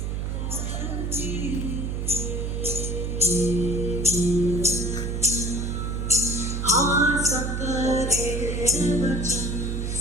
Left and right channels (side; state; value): right; noise; hum, 2 dB below the sound